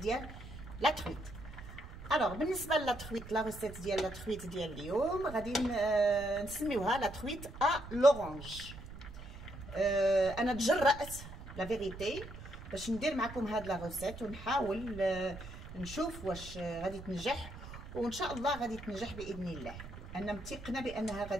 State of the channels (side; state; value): right; noise; rumble, 13 dB below the sound